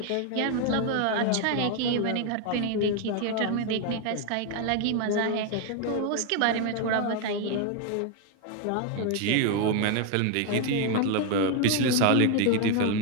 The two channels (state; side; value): different; both; correlation 0.01